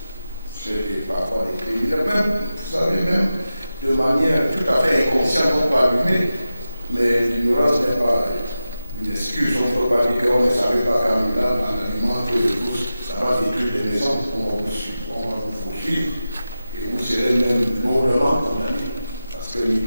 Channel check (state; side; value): inverted; both; correlation -0.92